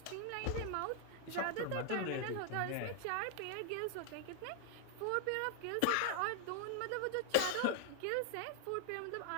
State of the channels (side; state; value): both; different; correlation 0.00